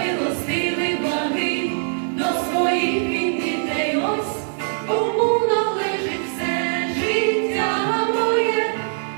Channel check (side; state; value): left; silent; digital silence